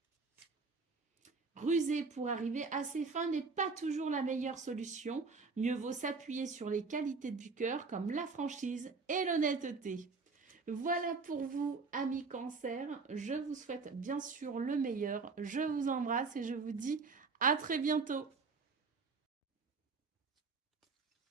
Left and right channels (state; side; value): quieter; left; 4.4 dB